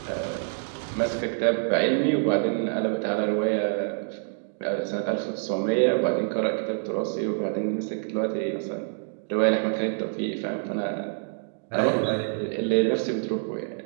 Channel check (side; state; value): left; silent; 61 dB below the other